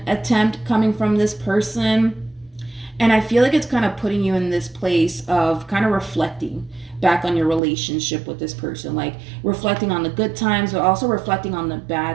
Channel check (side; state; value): left; drops out; at 7.6 s